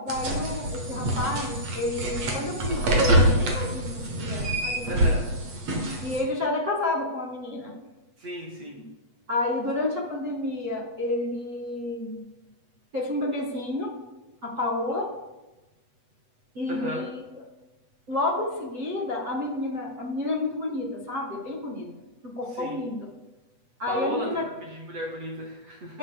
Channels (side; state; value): left; late; 8.1 ms